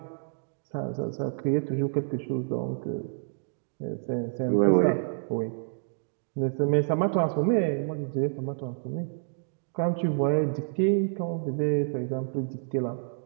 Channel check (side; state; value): left; silent; digital silence